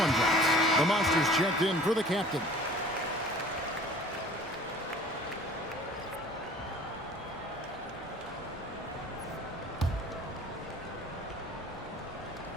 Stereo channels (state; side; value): normal; both; correlation 0.48